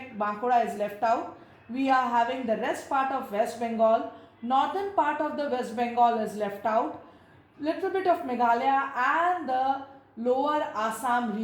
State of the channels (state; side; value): identical; both; correlation 1.00